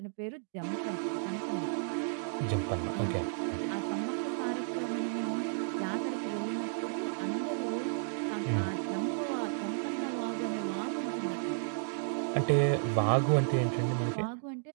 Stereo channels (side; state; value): left; silent; digital silence